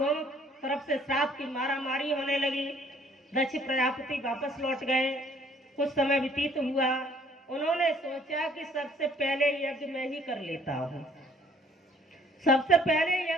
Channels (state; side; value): normal; both; correlation 0.59